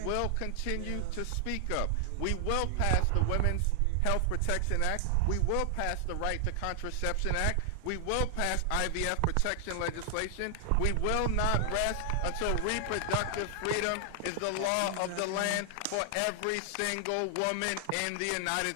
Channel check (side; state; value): both; different; correlation 0.00